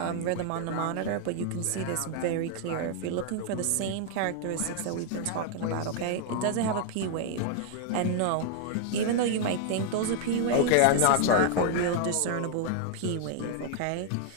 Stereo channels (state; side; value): different; both; correlation 0.00